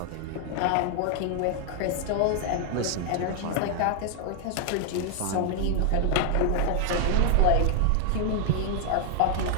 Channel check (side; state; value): both; different; correlation 0.00